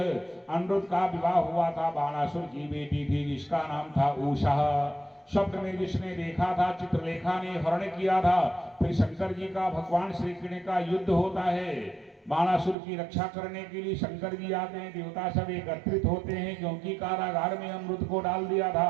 का विवाह हुआ था, बाणासुर की बेटी थी जिसका नाम था उषा। स्वप्न में जिसने देखा था, चित्रलेखा ने हरण किया था। फिर शंकर जी का भगवान श्री कृष्ण का युद्ध होता है, बाणासुर की रक्षा करने के लिए शंकर जी आते हैं, देवता सब एकत्रित होते हैं, क्योंकि कारागार में अमृत को डाल दिया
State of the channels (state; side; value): drops out; left; at 12.8 s